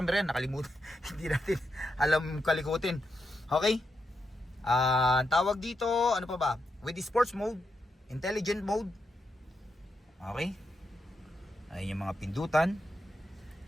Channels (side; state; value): both; normal; correlation 0.84